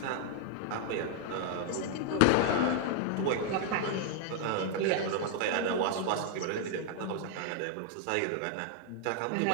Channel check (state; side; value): different; both; correlation 0.00